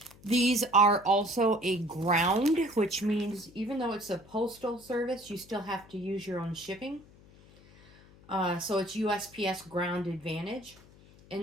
These are also a ground, which means even though it's a postal service, you still have to use your own shipping. So it's USPS Ground Advantage. And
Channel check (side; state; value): left; noise; hum, 24 dB below the sound